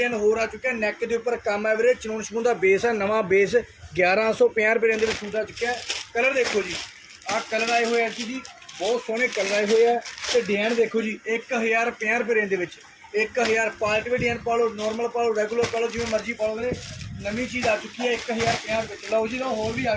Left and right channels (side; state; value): both; identical; correlation 1.00